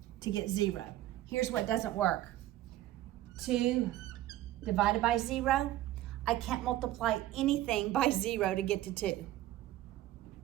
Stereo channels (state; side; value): quieter; left; 14.5 dB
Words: to get 0. Here's what doesn't work. 2 divided by 0, I can't multiply anything by 0 to get to 2.